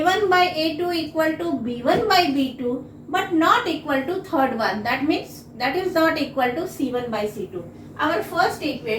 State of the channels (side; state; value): both; identical; correlation 1.00